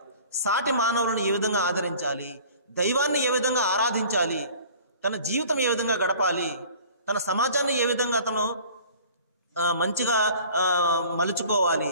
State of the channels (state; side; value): inverted; both; correlation -0.47